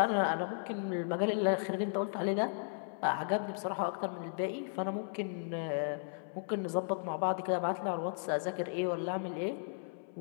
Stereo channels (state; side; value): silent; right; 54 dB below the other